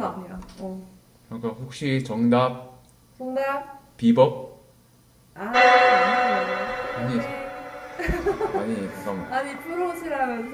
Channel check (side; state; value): both; identical; correlation 1.00